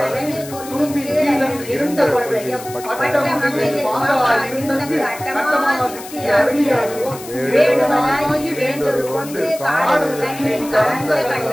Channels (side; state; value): left; noise; hiss, 15 dB below the sound